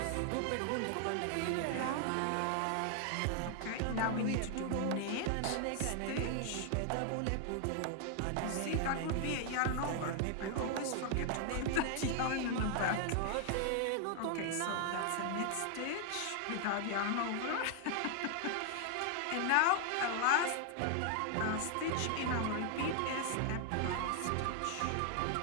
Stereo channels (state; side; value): different; both; correlation 0.00